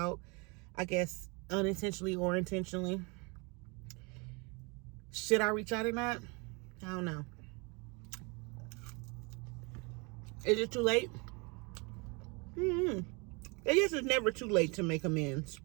I guess unintentionally or intentionally. Should I reach out or not? I don't know. Is it too late? I guess it's never too late to make amends.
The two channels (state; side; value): quieter; left; 30.0 dB